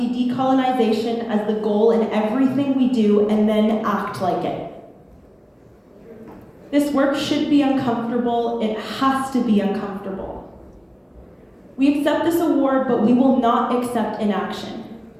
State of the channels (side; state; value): both; identical; correlation 1.00